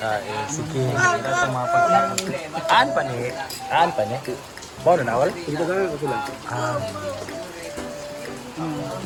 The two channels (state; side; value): identical; both; correlation 1.00